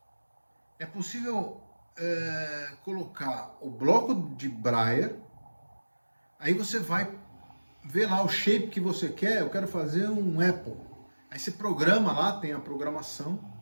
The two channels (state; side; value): inverted; both; correlation -1.00